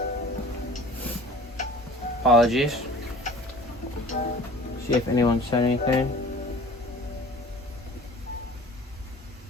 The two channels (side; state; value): both; normal; correlation 0.45